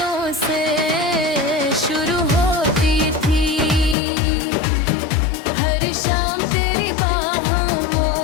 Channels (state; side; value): drops out; right; at 4.0 s